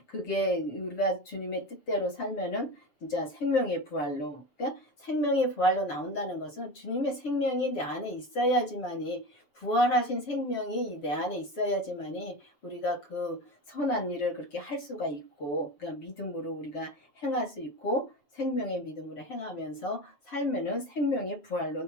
그게 우리가 주님의 뜻대로 살면은 진짜 생명의 부활로 그러니까 생명의 부활로 나온다는 것은 주님의 생명이 내 안에 있어야지만이 부활하신 생명이 내 안에 있어야지만이 우리가 그 선한 일을 그렇게 할 수가 있고, 그러니까 믿음으로 우리가 행할 수 있고, 생명의 믿음으로 행하면서 살면은 생명의 부활로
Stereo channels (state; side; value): late; right; 7.2 ms